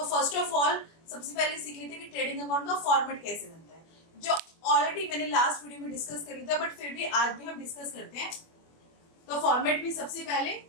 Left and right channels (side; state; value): right; late; 24 ms